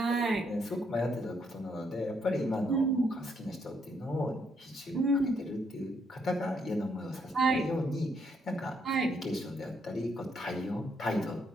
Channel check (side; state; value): both; normal; correlation 0.74